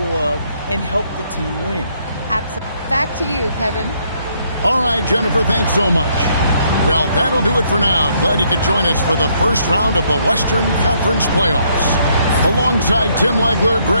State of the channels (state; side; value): inverted; both; correlation -0.70